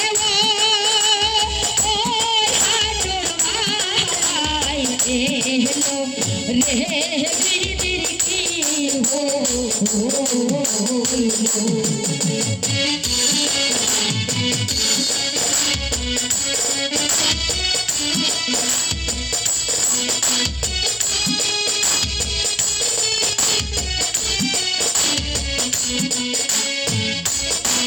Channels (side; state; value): both; identical; correlation 1.00